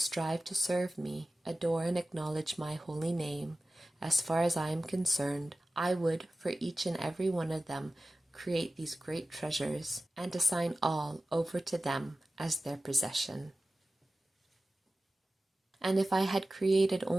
to serve me, adore and acknowledge my holy name, as far as I am concerned, I would, for each and every one of them, create these great treasures, and assign all over to them as their possession. And if I had created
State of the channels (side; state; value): both; normal; correlation 0.95